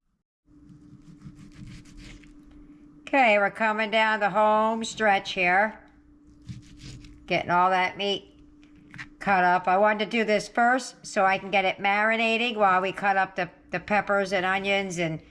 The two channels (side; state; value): both; identical; correlation 1.00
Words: Okay, we're coming down the home stretch here. Getting all that meat cut up. I wanted to do this first so I can get it marinating while we cut up the peppers and onions and